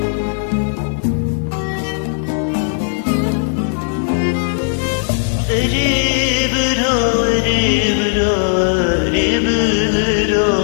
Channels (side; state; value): right; silent; 68 dB below the other